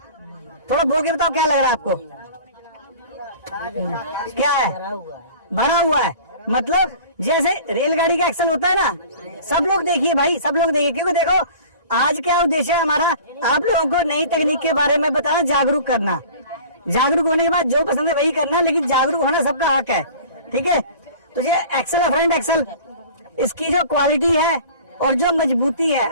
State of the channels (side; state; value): both; inverted; correlation -0.43